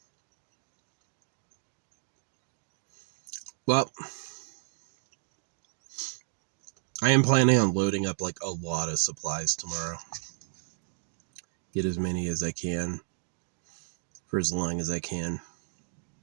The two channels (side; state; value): left; silent; digital silence